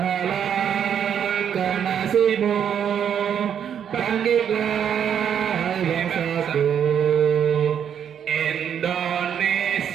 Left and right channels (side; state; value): left; quieter; 8.6 dB